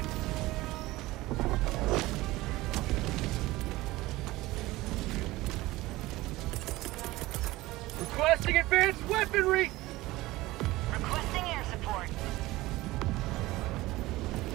Requesting advanced weaponry! Requesting air support.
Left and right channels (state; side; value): quieter; left; 18.8 dB